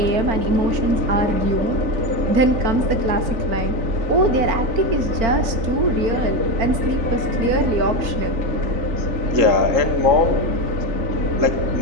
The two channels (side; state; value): left; late; 4.4 ms